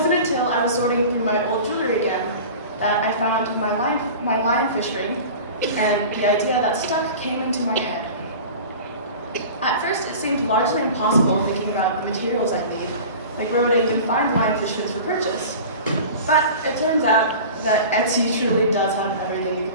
until I was sorting through my old jewelry again that I found my lionfish ring, and the idea that stuck came into my head. At first, it seemed largely impossible thinking about the materials I need, like where would I even find lionfish fins for purchase? But it turns out that Etsy truly does have everything you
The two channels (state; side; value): inverted; both; correlation -0.37